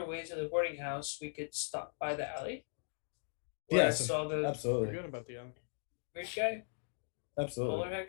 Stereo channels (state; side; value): silent; right; digital silence